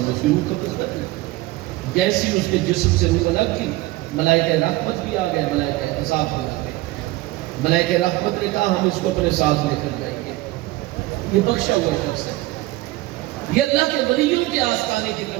نے اس کی روح قبض کر دی۔ جیسی اس کے جسم سے روح الگ کی، ملائکہ رحمت بھی آ گئے، ملائکہ عذاب بھی آ گئے۔ ملائکہ رحمت نے کہا ہم اس کو اپنے ساتھ لے کر جائیں گے، یہ بخشا ہوا شخص ہے، یہ اللہ کے ولیوں کے آستانے کی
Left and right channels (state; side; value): quieter; left; 18.6 dB